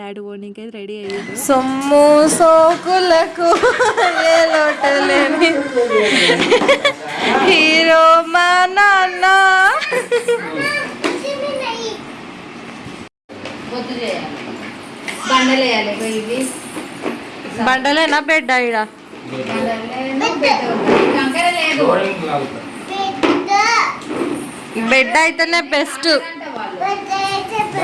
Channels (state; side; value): identical; both; correlation 1.00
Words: పోనీకే రెడీ అయ్యారు. సొమ్ము సోకులకు ఏ లోటు లేని హీరో మా నాన్న. బండలేనా బెడ్ ఈడ? బెడ్ అయితేనే బెస్ట్.